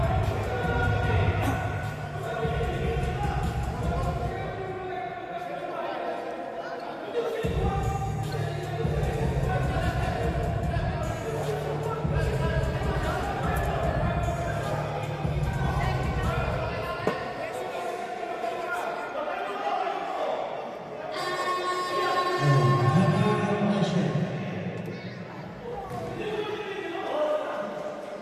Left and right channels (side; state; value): both; identical; correlation 1.00